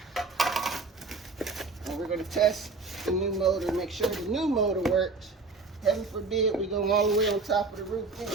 And we're going to test the new motor, make sure the new motor works. Heaven forbid we go all the way on top of the roof and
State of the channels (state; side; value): quieter; left; 3.9 dB